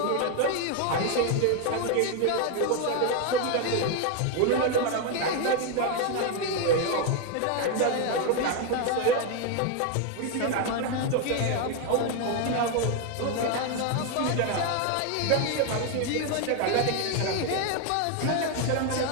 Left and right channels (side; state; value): both; different; correlation 0.01